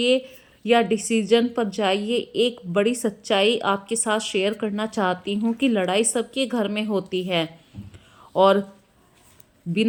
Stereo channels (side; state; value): both; identical; correlation 1.00